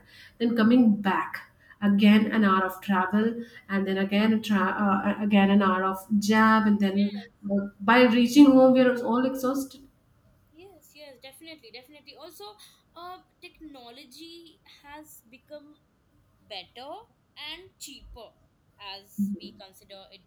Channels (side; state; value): both; identical; correlation 1.00